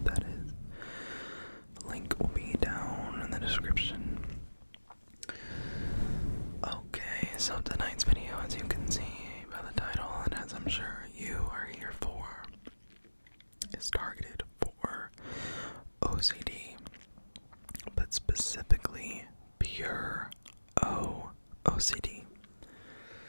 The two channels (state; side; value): inverted; both; correlation -1.00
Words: That is. The link will be down in the description. Okay, so tonight's video, as you can see by the title, and as I'm sure you are here for, is targeted for OCD, but specifically pure OCD.